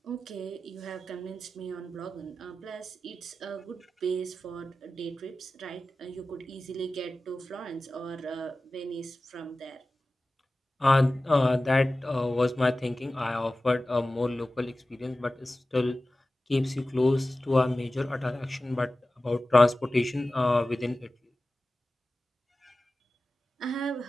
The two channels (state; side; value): normal; both; correlation 0.96